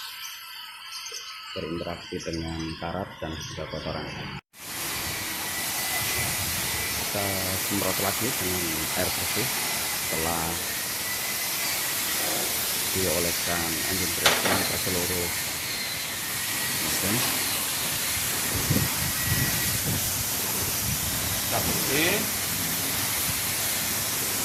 berinteraksi dengan karat dan juga kotoran. Kita semprot lagi dengan air bersih setelah dioleskan engine dressing ke seluruh mesin. Kita bersih.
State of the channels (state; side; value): identical; both; correlation 1.00